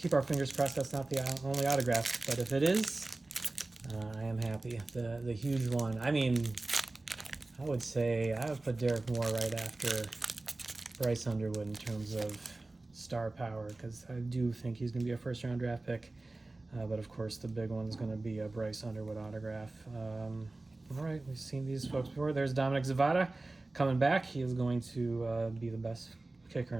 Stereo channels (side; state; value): left; quieter; 3.1 dB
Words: our fingers crossed that's not the only autograph, but if it is, I am happy. The huge one. I mean, I would say I would put Derek Moore right after Bryce Underwood in terms of star power, because I do think he's going to be a first-round draft pick. But of course, the big one is going to be a Bryce Underwood autograph. All right, we've seen these folks before. There's Dominic Zavada coming back. He is going to be the best kicker